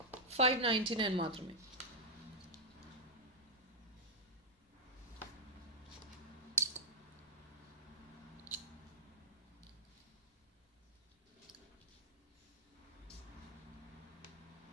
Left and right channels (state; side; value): normal; both; correlation -0.07